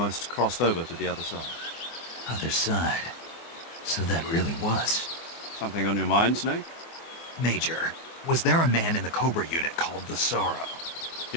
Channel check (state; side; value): late; right; 24 ms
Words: crossed over to the other side. Other side. So that really was. Something on your mind, Snake? Major, was there a man in the Cobra unit called the Sorrow?